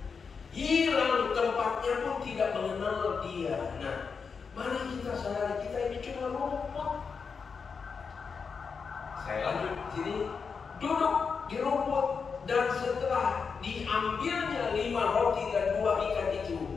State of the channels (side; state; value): right; quieter; 5.6 dB